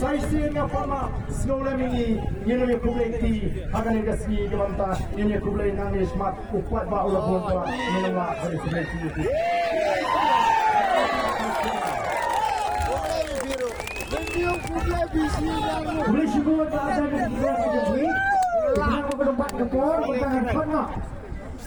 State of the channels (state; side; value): identical; both; correlation 1.00